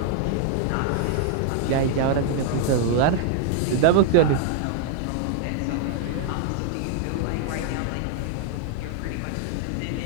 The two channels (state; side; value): different; both; correlation 0.00